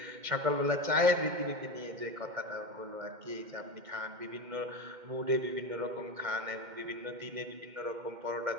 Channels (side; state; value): left; late; 2.1 ms